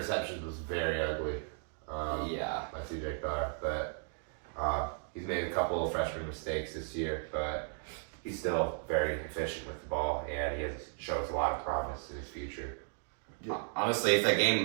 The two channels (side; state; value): left; silent; 54 dB below the other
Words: was very ugly. Yeah. By CJ Carr, but he's made a couple of freshman mistakes this year, but he's still very efficient with the ball, and he shows a lot of promise in his future. Yeah. Honestly, if that